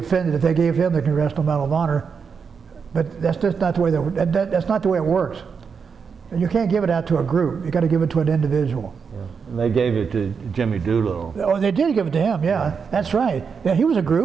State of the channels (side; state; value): left; quieter; 5.9 dB